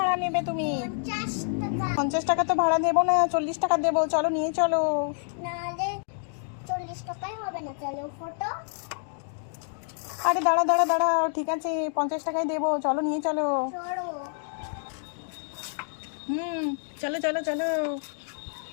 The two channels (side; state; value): right; silent; digital silence